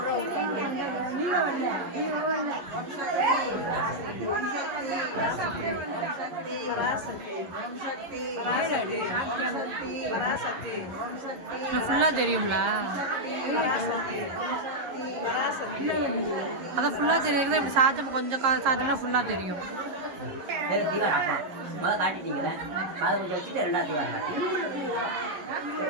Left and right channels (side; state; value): left; late; 11 ms